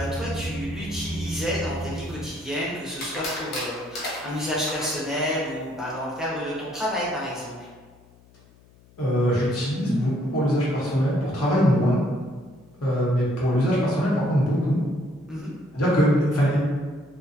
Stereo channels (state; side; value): noise; left; hum, 27 dB below the sound